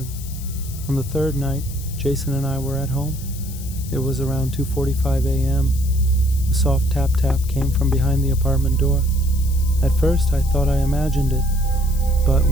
On the third night, Jason and I were at home. It was around 2:45 a.m. A A soft tap tap came from behind the apartment door. At first, I thought I imagined it, but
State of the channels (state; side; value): noise; left; hiss, 15 dB below the sound